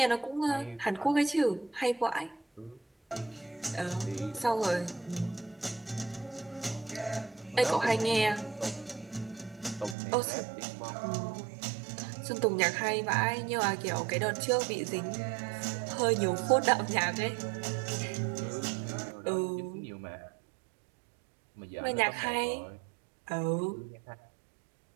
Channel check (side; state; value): left; drops out; at 10.0 s